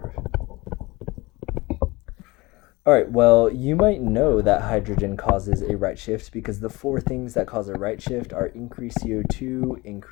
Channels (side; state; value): right; quieter; 22.4 dB